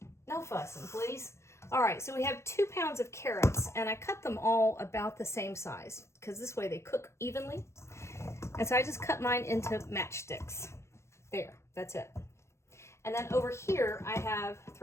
no fussing, please. All right, so we have 2 pounds of carrots, and I cut them all about the same size because this way they cook evenly. And so I just cut mine into matchsticks. There, that's it. And then over here, I have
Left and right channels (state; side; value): late; right; 0.13 ms